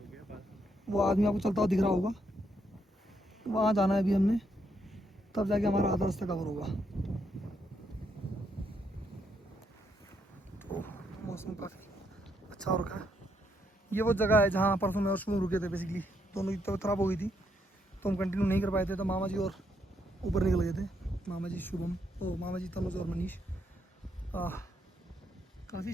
वो आदमी आपको चलता हुआ दिख रहा होगा, वहाँ जाना है अभी हमने, तब जाके हमारा आधा रास्ता कवर होगा। तो मौसम काफ़ी अच्छा हो रखा है। ये वो जगह है जहाँ परसों में और शुभ रुके थे। बेसिकली दोनों की तबीयत खराब हो गई थी तो हम कंटिन्यू नहीं कर पाए थे, तो मामा जी और ऊपर निकल गए थे, मामा जी शुभम, ओ मामा जी तनुज और मनीष। काफ़ी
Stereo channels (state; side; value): normal; both; correlation 0.76